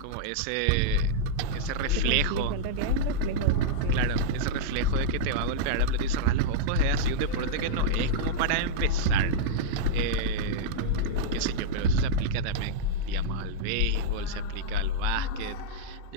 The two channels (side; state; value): both; different; correlation -0.03